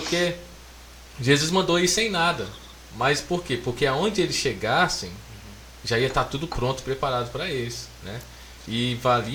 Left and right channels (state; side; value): identical; both; correlation 1.00